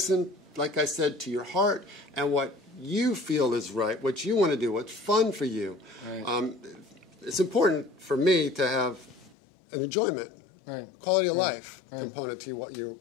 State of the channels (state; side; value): drops out; right; at 9.3 s